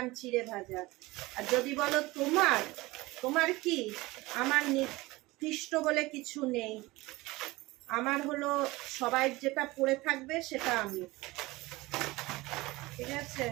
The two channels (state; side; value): quieter; left; 20.8 dB